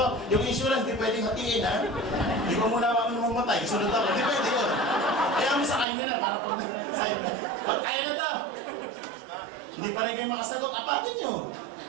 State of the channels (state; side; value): drops out; left; at 5.9 s